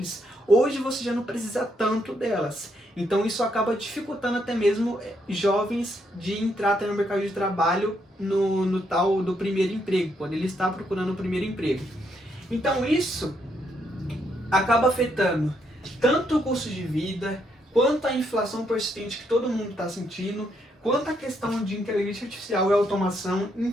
hoje você já não precisa tanto delas. Então, isso acaba dificultando até mesmo jovens de entrar até no mercado de trabalho no tal do primeiro emprego, quando ele está procurando o primeiro emprego. Então, isso acaba afetando tanto o custo de vida, quanto a inflação persistente que todo mundo está sentindo, quanto a questão de inteligência artificial e automação,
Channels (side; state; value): both; normal; correlation 0.75